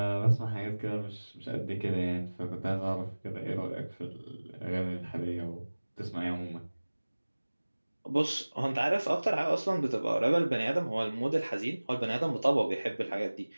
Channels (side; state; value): both; inverted; correlation -1.00